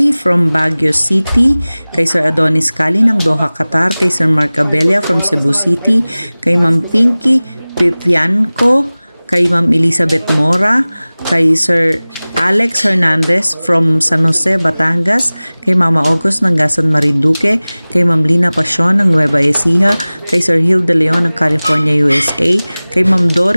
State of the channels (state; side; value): inverted; both; correlation -0.99